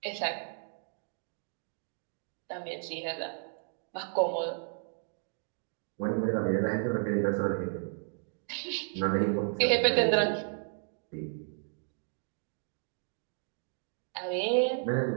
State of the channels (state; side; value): silent; left; 56 dB below the other